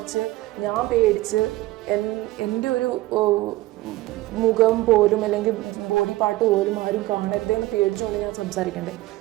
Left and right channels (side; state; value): left; quieter; 17.8 dB